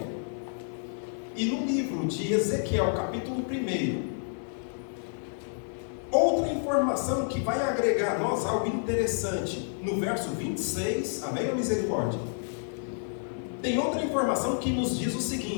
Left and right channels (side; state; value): right; silent; digital silence